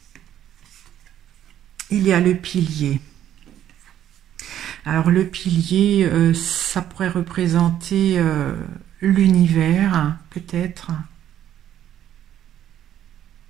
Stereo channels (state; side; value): quieter; left; 11.2 dB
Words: Il y a le pilier. Alors le pilier, ça pourrait représenter l'univers, peut-être.